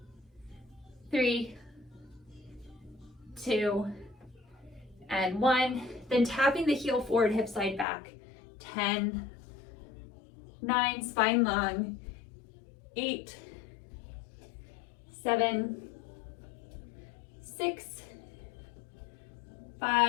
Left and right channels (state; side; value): drops out; right; at 7.9 s